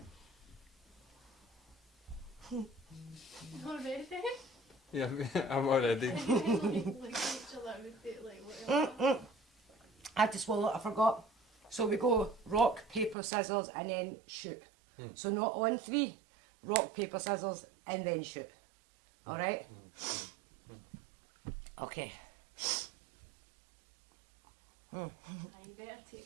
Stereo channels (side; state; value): left; drops out; at 13.2 s